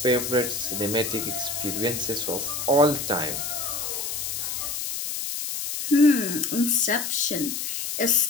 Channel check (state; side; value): noise; left; hiss, 4 dB below the sound